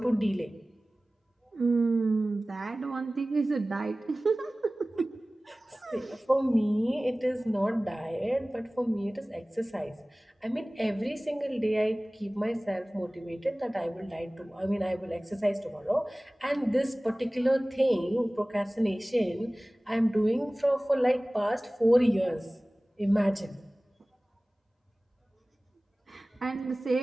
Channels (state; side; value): normal; both; correlation 0.98